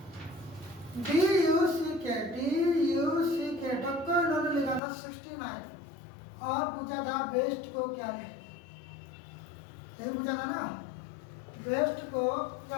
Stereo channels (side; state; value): right; drops out; at 4.8 s